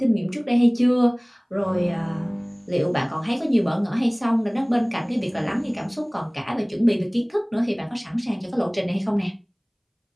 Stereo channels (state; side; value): identical; both; correlation 1.00